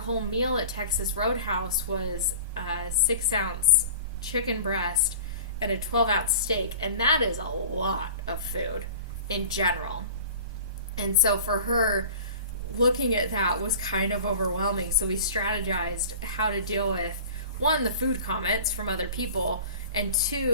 meal at Texas Roadhouse was a 6-ounce chicken breast and a 12-ounce steak. And that is a lot of food in general. And so for her, looking at that was kind of overwhelming. So we strategized how to deal with, one, the food comments from other people, and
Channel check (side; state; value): both; inverted; correlation -0.40